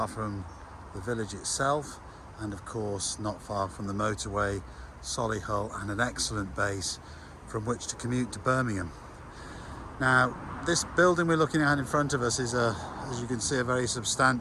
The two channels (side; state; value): both; identical; correlation 1.00